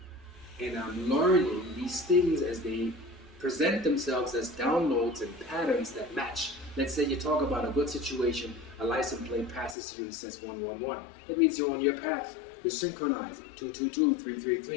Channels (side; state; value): right; drops out; at 9.8 s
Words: And I'm learning these things as they present themselves as downloads and patterns that match. Let's say you talk about a good situation, a license plate passes you and says 111. That means you're on your path. You're synchronizing. 222,